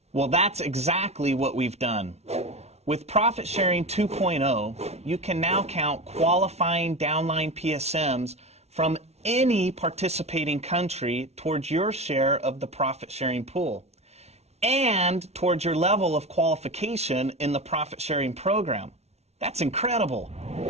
Well, that's exactly what we've done. With Profit Sharing 2.0, you can now count qualifying downline PSMs from any participating country towards your share of the profit sharing pool and towards your level of qualification in the profit sharing program. That's incredible.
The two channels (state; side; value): late; left; 0.31 ms